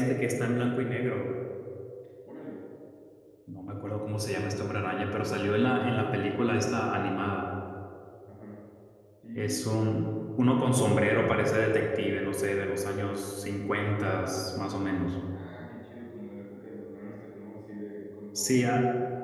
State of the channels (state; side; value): identical; both; correlation 1.00